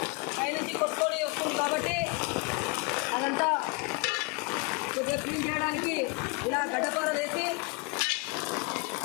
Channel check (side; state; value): right; quieter; 27.1 dB